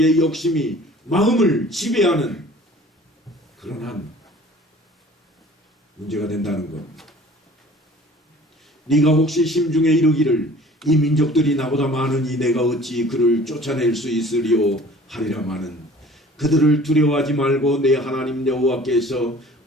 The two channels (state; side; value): normal; both; correlation 0.48